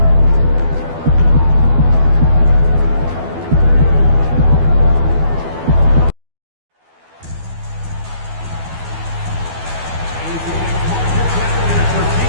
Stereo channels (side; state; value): left; late; 12 ms